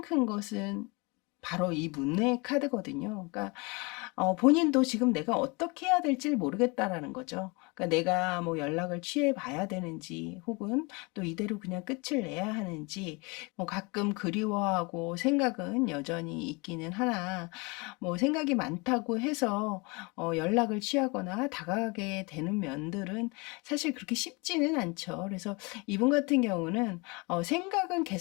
큰 것은 바로 이 문의 카드거든요. 그러니까 본인도 지금 내가 어떻게 해야 될지 모르겠다라는 거죠. 그러니까 내가 뭐 연락을 취해 봐야 되는지, 혹은 또 이대로 그냥 끝을 내야 하는지, 뭐 가끔 그리워하고 생각은 여전히 있기는 하나, 뭐 생각이 많다고 해서 연락을 취하거나 다가가게 되는 면들은 사실 그렇게 쉽지는 않죠. 그래서 이분 같은 경우는 생각은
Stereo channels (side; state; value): right; quieter; 28.1 dB